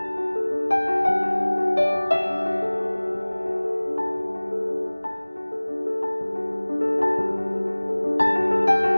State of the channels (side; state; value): both; inverted; correlation -1.00